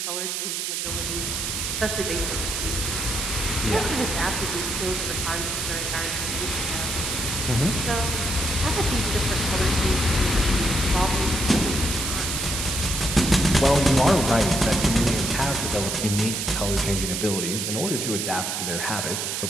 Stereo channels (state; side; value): noise; right; hiss, 2 dB below the sound